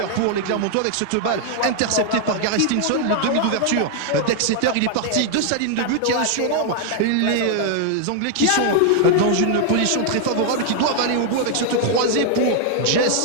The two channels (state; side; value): different; both; correlation 0.00